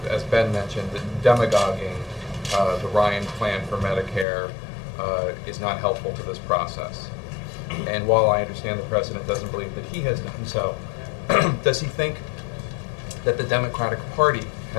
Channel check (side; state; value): right; drops out; at 4.2 s